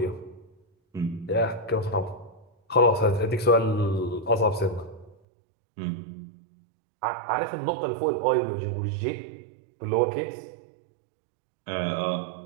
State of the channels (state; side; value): drops out; left; at 5.2 s